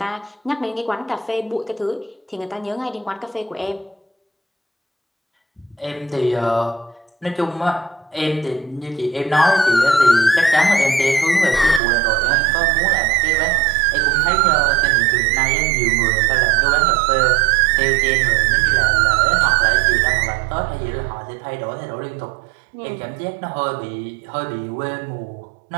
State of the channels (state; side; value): drops out; left; at 11.8 s